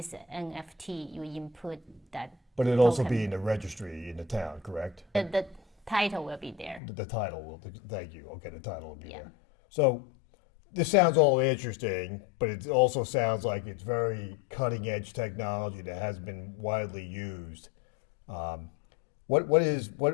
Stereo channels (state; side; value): drops out; right; at 6.8 s